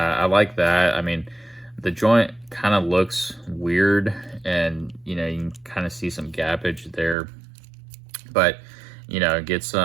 like that. I mean, the joint kind of looks weird, and you know, you can kind of see some gappage there. but you know, get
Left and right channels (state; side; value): drops out; left; at 7.2 s